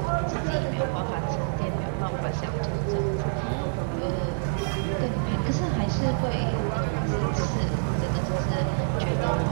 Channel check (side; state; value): left; silent; digital silence